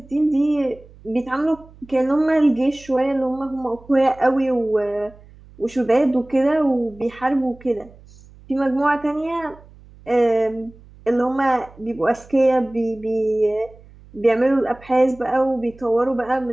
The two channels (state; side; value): noise; right; hum, 23 dB below the sound